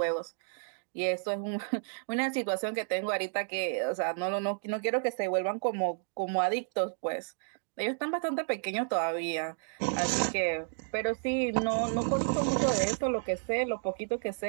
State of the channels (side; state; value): left; silent; digital silence